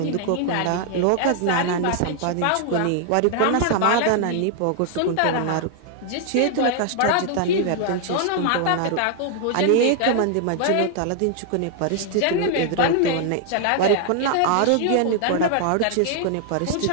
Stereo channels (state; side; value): different; both; correlation 0.00